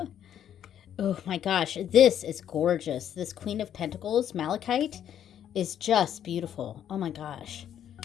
Oh my gosh, this is gorgeous. This Queen of Pentacles, Malachite, is just beautiful. Oh my gosh.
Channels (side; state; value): right; quieter; 9.9 dB